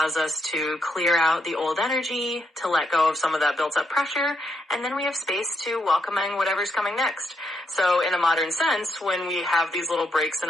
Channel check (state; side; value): normal; both; correlation 0.79